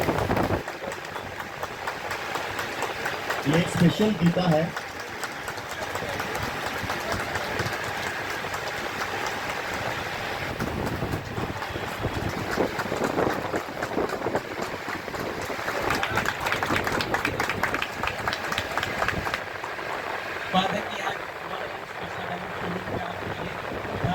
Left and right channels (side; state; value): both; identical; correlation 1.00